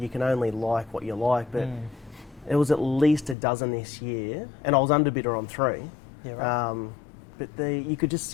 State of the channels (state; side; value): drops out; right; at 3.4 s